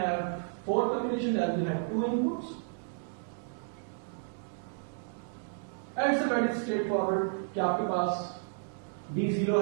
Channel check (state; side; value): silent; left; digital silence